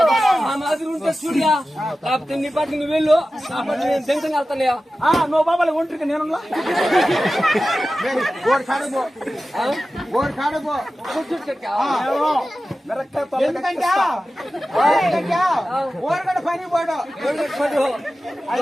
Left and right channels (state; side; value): normal; both; correlation 0.95